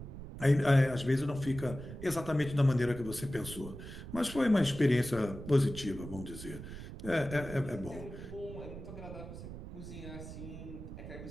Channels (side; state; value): right; noise; rumble, 11 dB below the sound